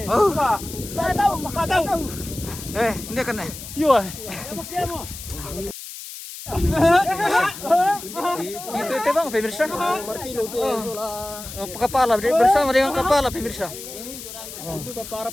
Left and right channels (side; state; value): left; noise; hiss, 12 dB below the sound